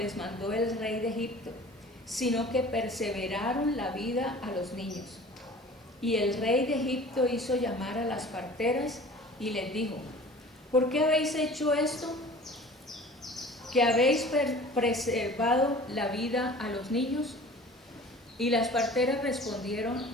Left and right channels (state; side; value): normal; both; correlation 0.44